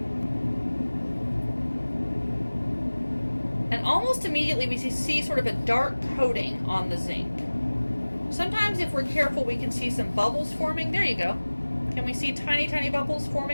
And almost immediately we see sort of a dark coating on the zinc. Sometimes if we're careful, we can see some bubbles forming. There you go. Can we see tiny, tiny bubbles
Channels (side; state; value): both; inverted; correlation -1.00